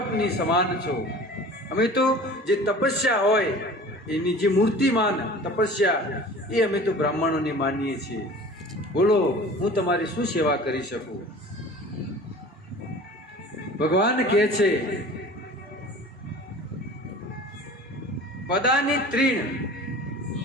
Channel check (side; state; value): both; normal; correlation 0.42